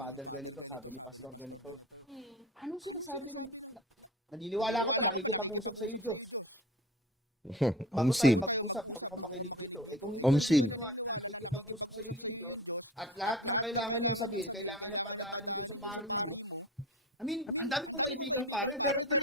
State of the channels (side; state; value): both; normal; correlation 0.33